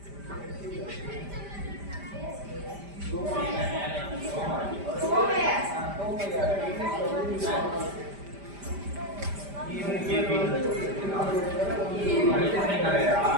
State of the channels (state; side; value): late; left; 5.1 ms